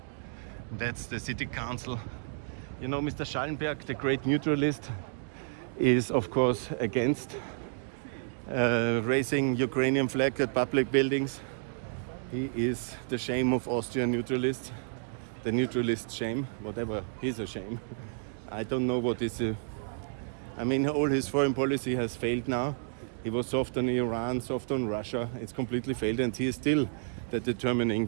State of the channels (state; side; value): silent; left; digital silence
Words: That's the city council. You know, Mr. Schallenberg, the great neutralist, is of course against raising Ukrainian flag at public buildings. He is the shame of Austrian neutralists, the neutralist shame, whatever, he's a shame. I don't know what is all his foreign policy has failed now. He was soft on Iran, soft on Russia. It's completely failed, and he is still the determining